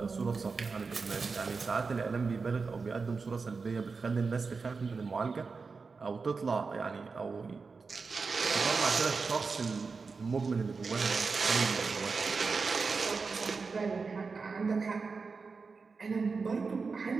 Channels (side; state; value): left; quieter; 4.6 dB